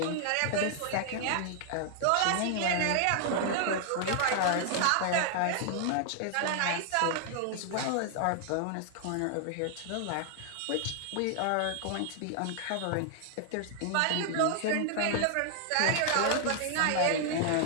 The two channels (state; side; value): different; both; correlation 0.00